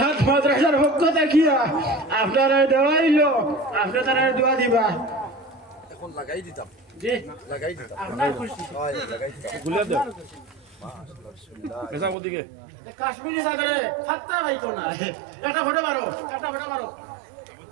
মাদ্রাসার পক্ষ দেখিয়া আপনারা দেওয়াইল, আপনি তারা দোয়া দিবা। এখন লাগাই দিতাম, জি লাগাই দিতাম, আপনার খুশি। লাগাই দিতাম। কাশ্মীরি চাদরে ফাত্তা পাইতো না। একটা ফটো মারো, একটা ফটো মারো।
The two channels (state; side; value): drops out; left; at 12.2 s